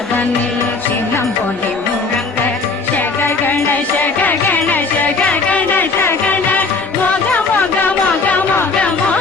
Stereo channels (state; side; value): quieter; right; 4.1 dB